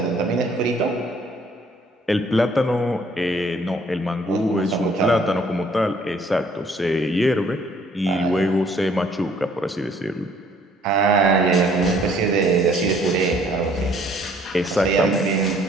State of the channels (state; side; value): normal; both; correlation 0.61